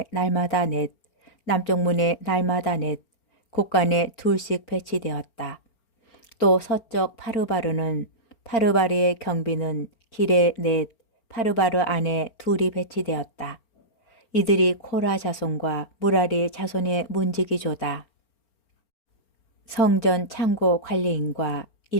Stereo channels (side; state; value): right; late; 4.4 ms